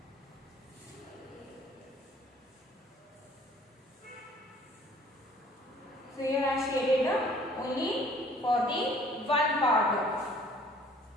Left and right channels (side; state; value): both; normal; correlation 0.55